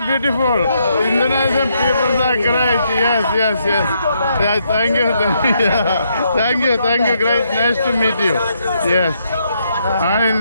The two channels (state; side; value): inverted; both; correlation -0.76